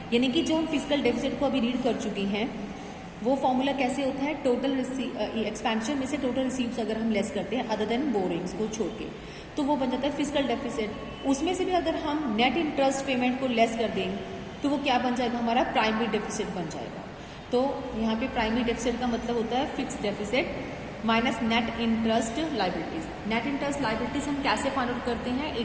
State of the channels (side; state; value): both; identical; correlation 1.00